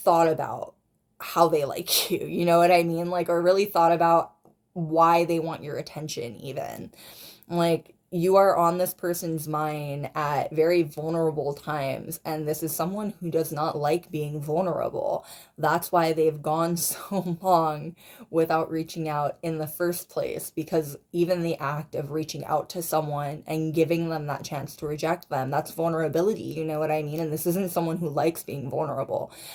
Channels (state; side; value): identical; both; correlation 1.00